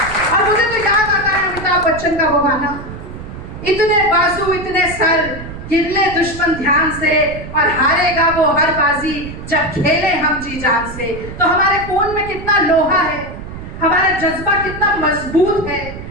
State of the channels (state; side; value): noise; right; rumble, 11 dB below the sound